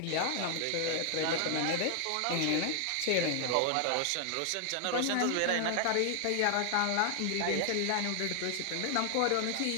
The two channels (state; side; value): different; both; correlation 0.00